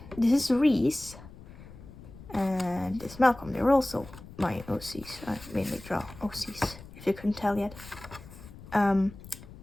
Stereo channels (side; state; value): left; noise; rumble, 17 dB below the sound